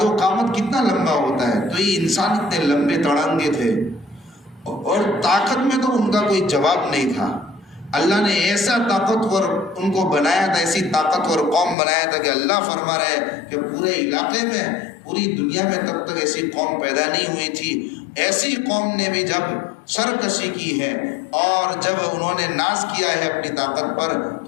و قامت کتنا لمبا ہوتا ہے، تو یہ انسان اتنے لمبے تڑنگے تھے اور طاقت میں تو ان کا کوئی جواب نہیں تھا۔ اللہ نے ایسا طاقتور ان کو بنایا تھا، ایسی طاقتور قوم بنایا تھا کہ اللہ فرما رہے ہیں کہ پورے علاقے میں، پوری دنیا میں تب تک ایسی قوم پیدا نہیں ہوئی تھی۔ ایسی قوم نے بھی جب سرکشی کی ہے اور جب انہوں نے ناز کیا ہے اپنی طاقت پر،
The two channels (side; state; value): right; drops out; at 11.8 s